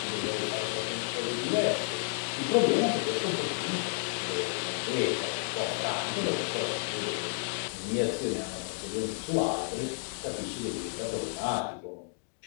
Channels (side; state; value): right; silent; digital silence